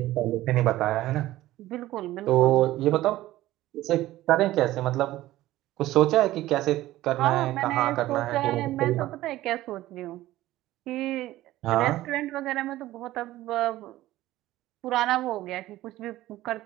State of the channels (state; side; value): quieter; left; 15.8 dB